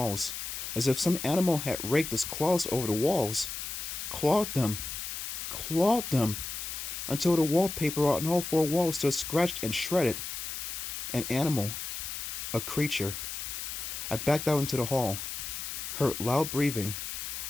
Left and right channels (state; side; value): noise; left; hiss, 6 dB below the sound